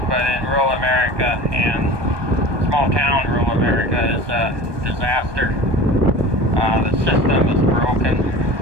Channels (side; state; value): left; late; 1.2 ms